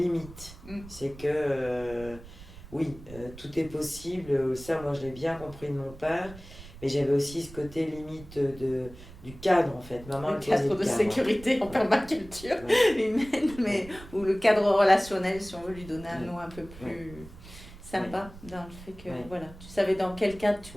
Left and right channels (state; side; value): noise; right; rumble, 17 dB below the sound